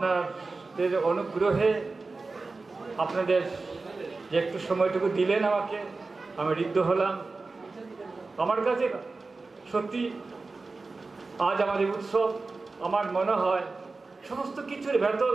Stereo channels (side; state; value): left; quieter; 3.8 dB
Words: অনুগ্রহে, আপনাদের যে একটু সময়টুকু দিলেন আমাকে, আমি ঋদ্ধ হলাম। আমার কাছে সত্যি আজ আমাদের উৎসব, আমার মনে হয় সমস্ত কিছুর ভেতর